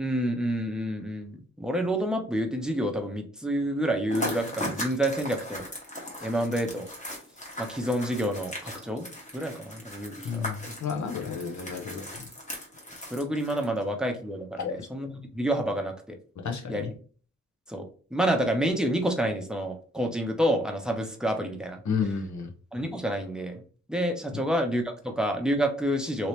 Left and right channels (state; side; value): normal; both; correlation 0.65